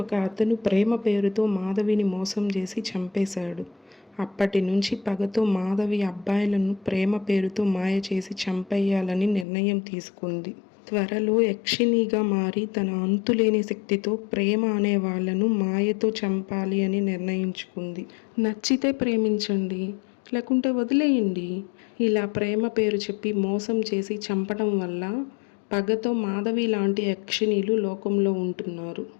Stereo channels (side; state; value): right; drops out; at 9.5 s